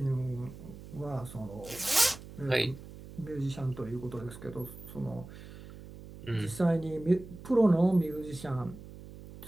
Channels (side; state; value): right; noise; hum, 15 dB below the sound